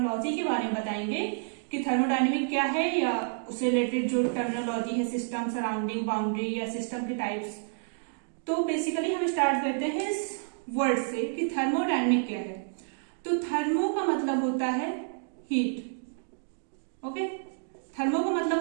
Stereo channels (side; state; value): left; silent; digital silence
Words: के बारे में बताएंगे कि थर्मोडायनेमिक क्या है या उससे रिलेटेड जो टर्मिनोलॉजी है, सिस्टम, सराउंडिंग, बाउंड्री या सिस्टम के टाइप्स। तो बेसिकली हम स्टार्ट करते हैं इस वर्ड से कि थर्मोडायनेमिक क्या है। तो थर्मो का मतलब होता है हीट, ओके। थर्मो का